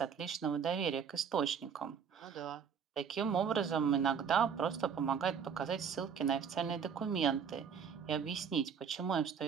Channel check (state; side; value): quieter; left; 7.0 dB